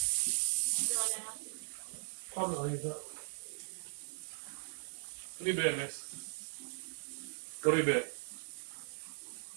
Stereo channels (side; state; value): left; silent; 52 dB below the other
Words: I'm not even. Go to bed, miss. Go to bed.